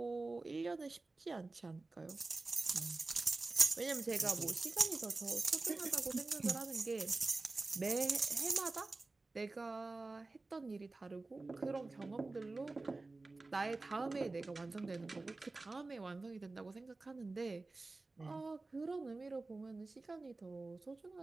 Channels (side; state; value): left; quieter; 3.4 dB